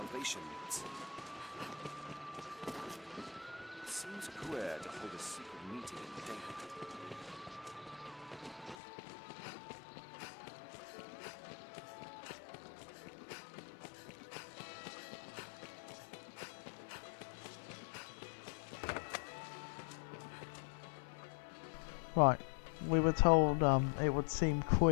meets. It seems queer to hold a secret meeting in daylight. Right, we were told it would seem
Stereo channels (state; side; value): drops out; right; at 8.8 s